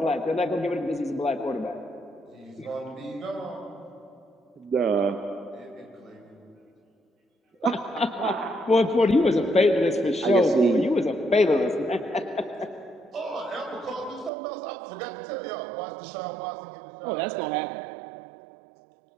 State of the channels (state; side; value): drops out; left; at 14.3 s